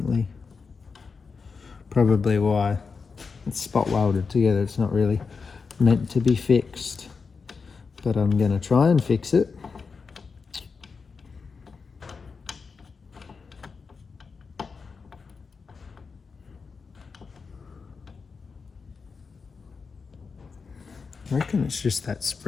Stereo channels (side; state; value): right; quieter; 5.0 dB